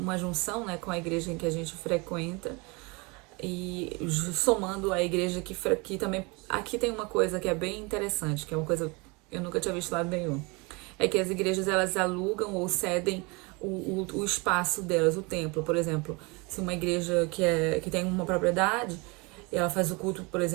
junção, né, com a igreja em que a gente frequenta, e somando a igreja que também... Aqui tem uma coisa que é bem interessante, que é uma coisa que eu nunca tinha visto lado nenhum. É que as igrejas, elas alugam ou cedem o espaço delas, o templo. Por exemplo, se uma igreja que tem uma propriedade, ela faz o culto, por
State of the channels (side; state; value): left; quieter; 28.0 dB